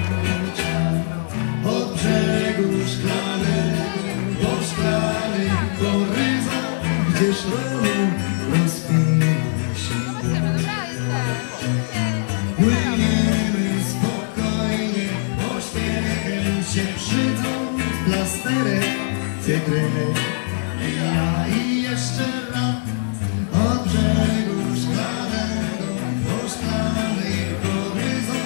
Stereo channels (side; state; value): right; silent; 58 dB below the other